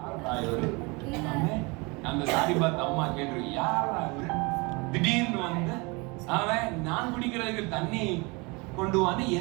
அந்த சாரிபாத் அம்மா கேட்டு, யாரா இவரு திடீர்னு வந்து அவன் நான் குடிக்கிறதுக்கு தண்ணி கொண்டு வான்னு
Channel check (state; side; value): quieter; left; 27.4 dB